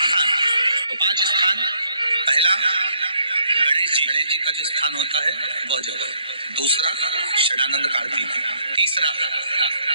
स्थान, पहला गणेश जी का जो स्थान होता है वह जगह, दूसरा षडानंद कार्तिक, तीसरा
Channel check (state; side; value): inverted; both; correlation -0.69